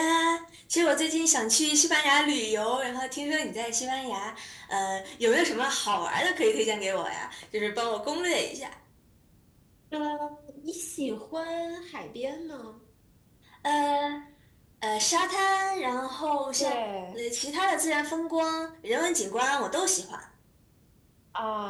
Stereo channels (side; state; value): both; identical; correlation 1.00